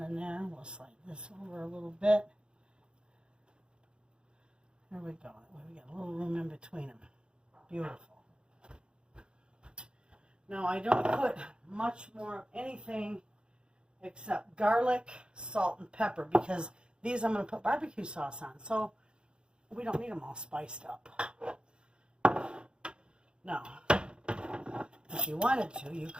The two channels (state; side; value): late; left; 0.053 ms